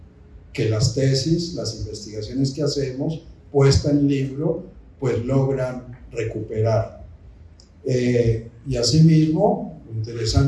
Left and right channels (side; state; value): both; identical; correlation 1.00